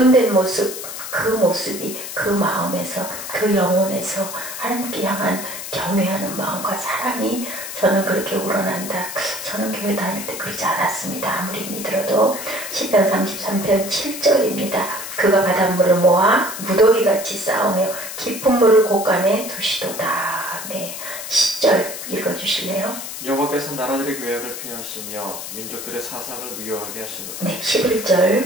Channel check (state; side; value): noise; left; hiss, 8 dB below the sound